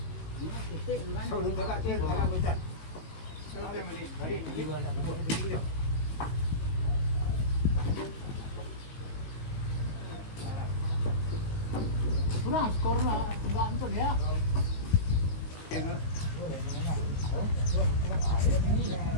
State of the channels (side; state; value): right; late; 18 ms